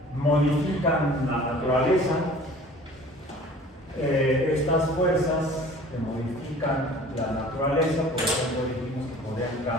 modifican la naturaleza. Estas fuerzas que modifican la naturaleza, por ejemplo, dijimos que podrían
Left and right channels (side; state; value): both; normal; correlation 0.47